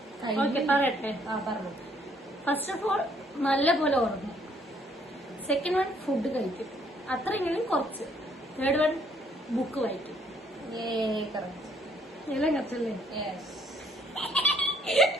പറയട്ടെ. പറഞ്ഞു. ഫസ്റ്റ് ഓഫ് ഓൾ നല്ല പോലെ ഉറങ്ങും. സെക്കൻഡ് വൺ ഫുഡ് കഴിക്കും. അത്രയെങ്കിലും കുറച്ച്. തേർഡ് വൺ ബുക്ക് വായിക്കും. എല്ലാം കറച്ചല്ലേ?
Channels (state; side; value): normal; both; correlation 0.65